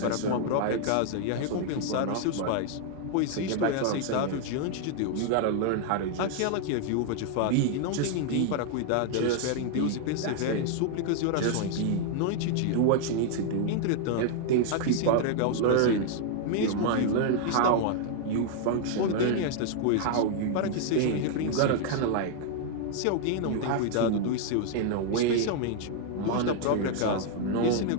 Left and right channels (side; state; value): both; different; correlation 0.00